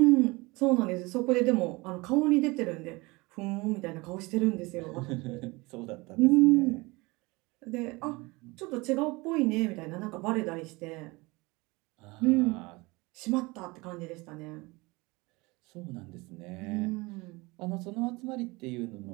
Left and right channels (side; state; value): left; quieter; 24.0 dB